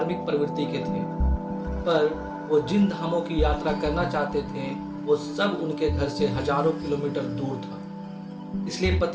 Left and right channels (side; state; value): both; identical; correlation 1.00